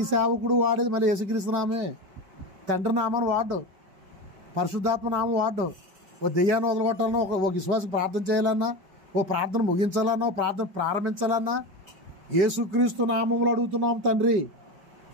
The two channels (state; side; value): late; left; 5.1 ms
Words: సేవకుడు వాడేది మళ్ళీ యేసుక్రీస్తు నామే. తండ్రి నామాన్ని వాడు, పరిశుద్ధాత్మ నామం వాడు. ఓ దెయ్యాన్ని వదలగొట్టాలన్నా, ఒక విశ్వాసం ప్రార్థన చేయాలన్నా, ఓ ప్రార్థన ముగించాలన్నా, ఓ ప్రార్థన ప్రారంభించాలన్నా యేసుక్రీస్తు నామంలో అడుగుతున్నాం తండ్రి.